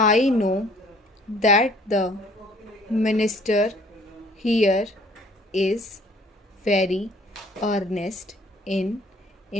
know that the minister here is very earnest in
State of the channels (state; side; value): normal; both; correlation 0.57